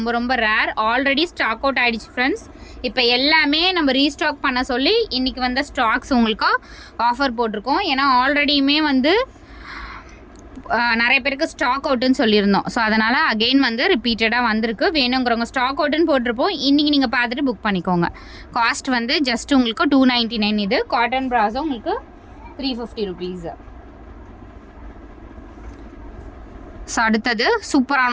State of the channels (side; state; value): both; identical; correlation 1.00